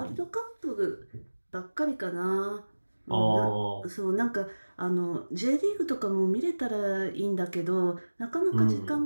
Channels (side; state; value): both; inverted; correlation -1.00